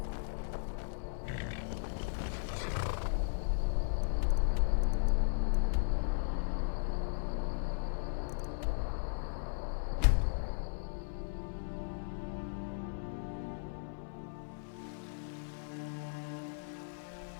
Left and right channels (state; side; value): silent; right; 53 dB below the other